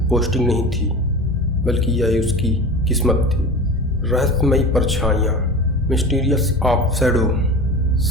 पोस्टिंग नहीं थी, बल्कि यह उसकी किस्मत थी। रहस्यमयी परछाइयाँ, मिस्टीरियस ऑफ शैडो।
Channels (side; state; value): both; normal; correlation 0.33